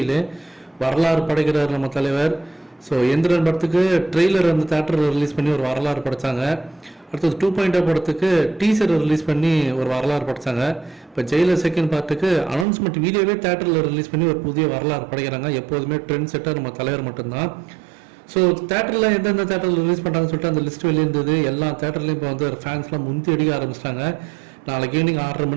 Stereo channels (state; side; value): drops out; left; at 12.7 s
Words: வரலாறு படைக்கிறார் நம்ம தலைவர். ஸோ எந்திரன் படத்துக்கு ட்ரெய்லர் வந்து தேட்டரில் ரிலீஸ் பண்ணி ஒரு வரலாறு படைத்தாங்க. அடுத்தது 2.0 படத்துக்கு டீசர் ரிலீஸ் பண்ணி ஒரு வரலாறு படைத்தாங்க. இப்போ ஜெயிலர் செகண்ட் பார்ட்டுக்கு அனௌன்ஸ்மெண்ட் வீடியோவே தேட்டரில் ரிலீஸ் பண்ணி ஒரு புதிய வரலாறு படைக்கிறாங்க. எப்போதுமே ட்ரெண்ட் செட்டர் நம்ம தலைவர் மட்டும்தான். ஸோ தேட்டரில் எந்தெந்த தேட்டரில் ரிலீஸ் பண்ணுறாங்கன்னு சொல்லிட்டு அந்த லிஸ்ட் வெளியிருந்தது. எல்லா தேட்டர்லையும் இப்போ வந்து ஃபேன்ஸ்லாம் முந்தி அடிக்க ஆரம்பிச்சிட்டாங்க. நாளைக்கு ஈவினிங் 6:30